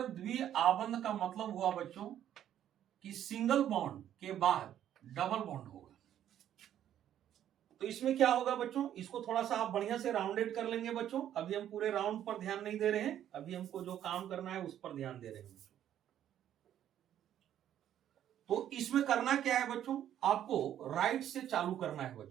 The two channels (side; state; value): left; quieter; 10.9 dB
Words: द्विआबंध का मतलब हुआ बच्चों कि सिंगल बॉन्ड के बाद डबल बॉन्ड होगा। तो इसमें क्या होगा बच्चों, इसको थोड़ा सा आप बढ़िया से राउंडेड कर लेंगे बच्चों। अभी हम पूरे राउंड पर ध्यान नहीं दे रहे हैं, अभी हमको जो काम करना है उस पर ध्यान दे रहे हैं बच्चों। तो इसमें करना क्या है बच्चों, आपको राइट से चालू करना है